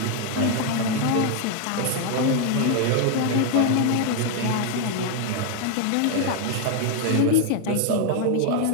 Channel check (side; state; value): both; different; correlation 0.01